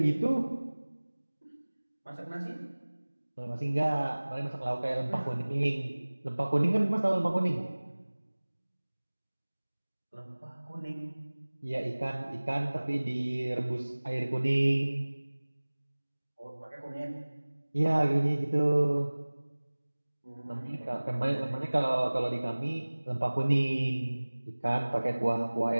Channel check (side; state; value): both; inverted; correlation -1.00